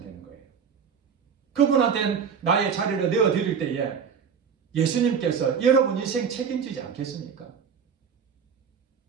되는 거예요. 그분한테 나의 자리를 내어드릴 때에 예수님께서 여러분 인생 책임지지 않겠습니까?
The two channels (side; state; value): left; quieter; 6.7 dB